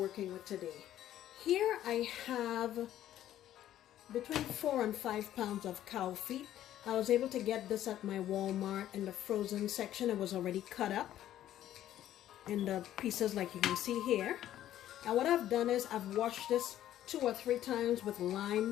with today. Here I have between 4 and 5 pounds of cow feet. I was able to get this at my Walmart in the frozen section. It was already cut up in the pieces like you can see here. And what I've done is I've washed this 2 or 3 times with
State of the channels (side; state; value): right; quieter; 12.3 dB